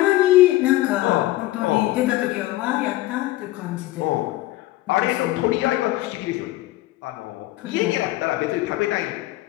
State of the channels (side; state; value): right; quieter; 17.1 dB